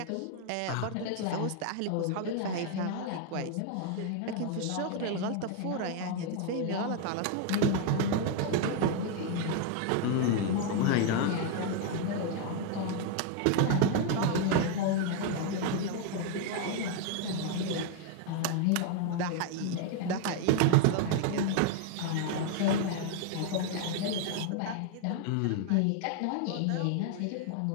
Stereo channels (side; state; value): both; different; correlation 0.01